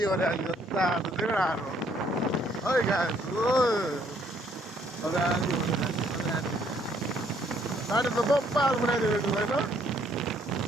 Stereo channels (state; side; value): normal; both; correlation 0.66